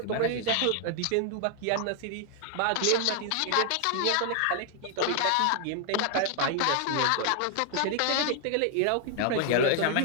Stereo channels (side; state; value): both; different; correlation 0.00